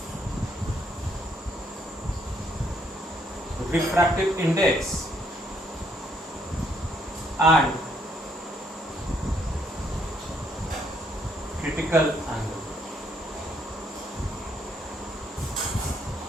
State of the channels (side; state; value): both; normal; correlation 0.70